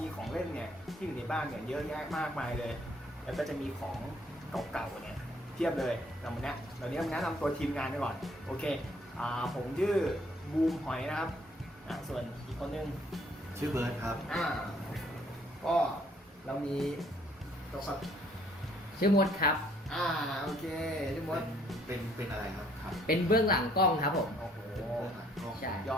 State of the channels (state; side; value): normal; both; correlation 0.63